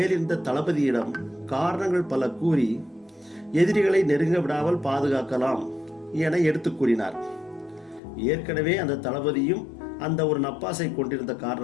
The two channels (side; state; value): right; drops out; at 8.0 s